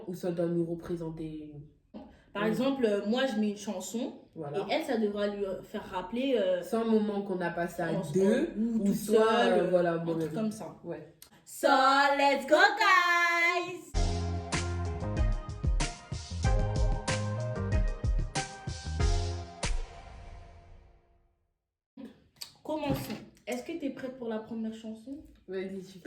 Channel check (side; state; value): both; identical; correlation 1.00